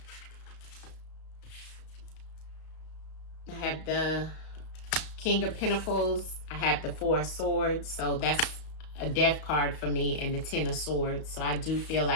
I have the King of Pentacles. I have the 4 of Swords. So that's a death card for me, and the 10 of Swords. So I do feel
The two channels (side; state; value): right; late; 34 ms